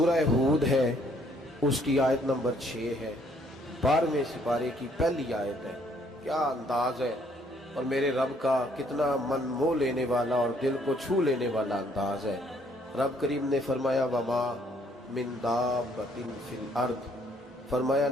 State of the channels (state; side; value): normal; both; correlation 0.65